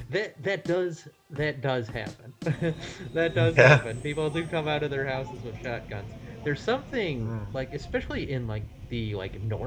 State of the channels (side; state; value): both; identical; correlation 1.00